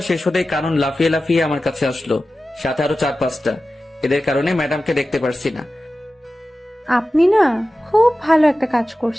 শেষ হতেই কানন লাফিয়ে লাফিয়ে আমার কাছে আসলো, সাথে আরো 4-5টা। এদের কারণে ম্যাডামকে দেখতে পারছি না। আপনি না খুব ভালো একটা কাজ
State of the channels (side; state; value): both; normal; correlation 0.94